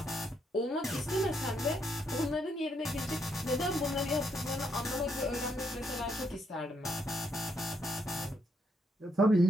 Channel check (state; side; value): normal; both; correlation 0.75